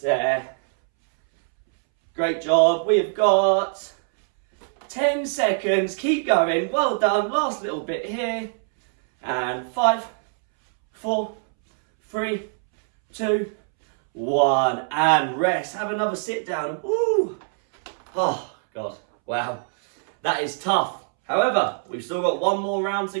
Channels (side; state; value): left; silent; 63 dB below the other